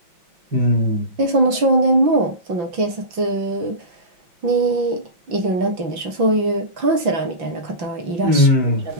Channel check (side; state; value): left; late; 5.9 ms